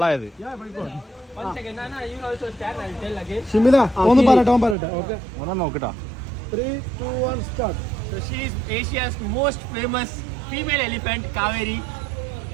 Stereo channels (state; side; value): drops out; left; at 4.8 s